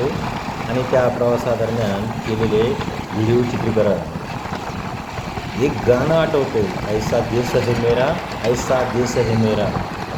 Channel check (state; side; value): identical; both; correlation 1.00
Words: आणि त्या प्रवासादरम्यान केलेले व्हिडिओ चित्रीकरण. एक गाणं आठवते, ऐसा देश है मेरा, ऐसा देश है मेरा,